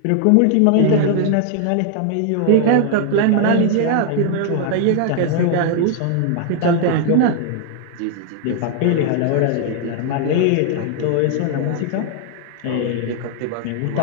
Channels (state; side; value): different; both; correlation 0.00